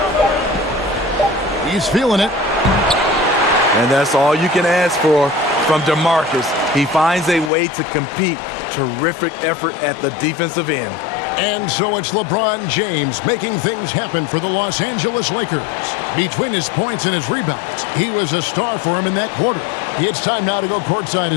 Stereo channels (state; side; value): drops out; right; at 7.5 s